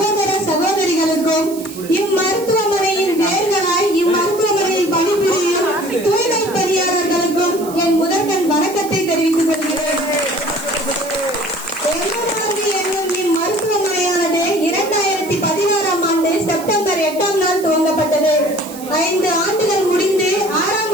சகோதரிகளுக்கும், இம்மருத்துவமனையின் வேர்களாய் இம்மருத்துவமனையில் பணிபுரியும் தூய்மை பணியாளர்களுக்கும் என் முதற்கண் வணக்கத்தை தெரிவித்துக் கொள்கிறேன். என்னும் இம்மருத்துவமனையானது 2016ஆம் ஆண்டு செப்டம்பர் 8ஆம் நாள் துவங்கப்பட்டது. 5 ஆண்டுகள் முடிந்து 6ஆம்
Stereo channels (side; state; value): right; noise; hiss, 16 dB below the sound